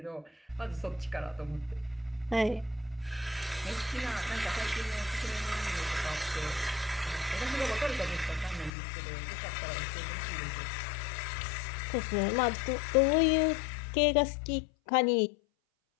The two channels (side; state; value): right; drops out; at 8.7 s